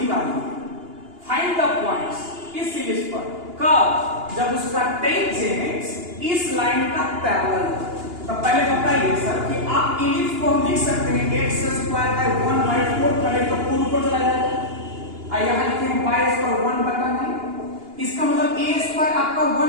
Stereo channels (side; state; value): left; late; 2.9 ms